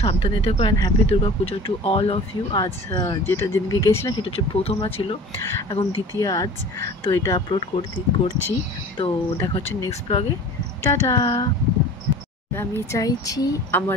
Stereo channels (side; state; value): both; normal; correlation 0.42